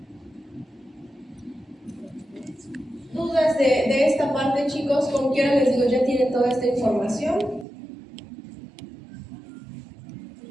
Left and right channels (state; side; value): drops out; left; at 7.7 s